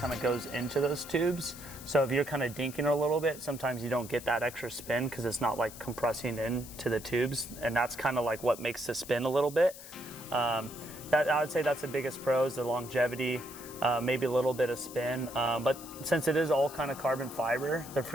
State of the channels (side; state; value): left; noise; hiss, 15 dB below the sound